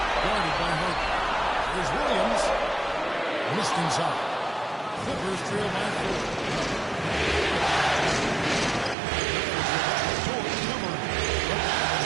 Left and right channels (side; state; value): left; drops out; at 9.0 s